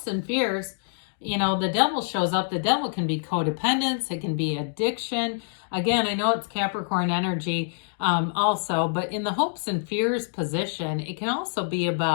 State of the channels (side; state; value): right; silent; digital silence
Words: and fears, you know, the devil shows up. The devil can be codependence. It can be addiction. Again, I know it's Capricorn energy also, but in the hopes and fears position, it can also be